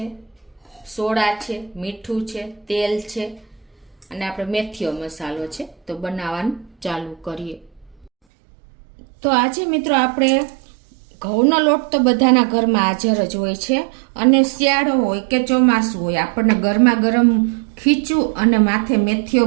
સોડા છે, મીઠું છે, તેલ છે અને આપણે મેથીઓ મસાલો છે। તો બનાવવાનું ચાલુ કરીએ। તો આજે મિત્રો આપણે ઘઉંનો લોટ તો બધાના ઘરમાં હાજર જ હોય છે અને શિયાળો હોય કે ચોમાસું હોય, આપણને ગરમા ગરમ ખીચું અને માથે મેથીઓ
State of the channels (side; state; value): left; drops out; at 8.1 s